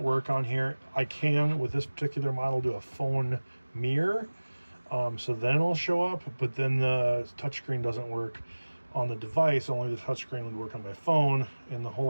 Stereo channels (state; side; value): inverted; both; correlation -1.00